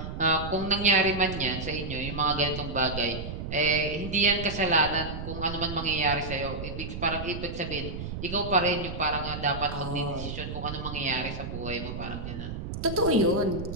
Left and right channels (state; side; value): noise; right; rumble, 7 dB below the sound